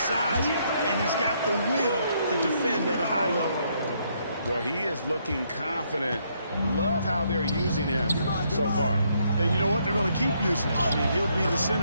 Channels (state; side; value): inverted; both; correlation -0.73